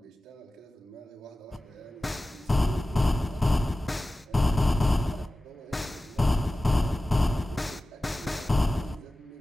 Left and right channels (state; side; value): normal; both; correlation 0.96